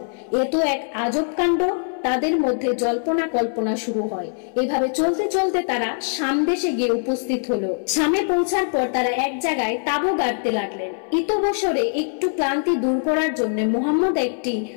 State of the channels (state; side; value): silent; right; 61 dB below the other